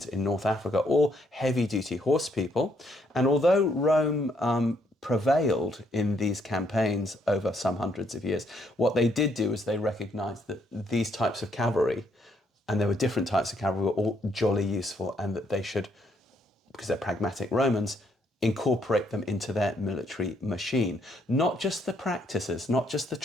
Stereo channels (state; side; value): normal; both; correlation 0.71